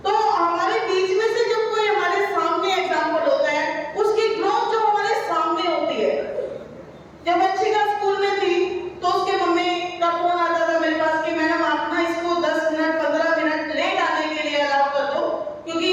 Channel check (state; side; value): identical; both; correlation 1.00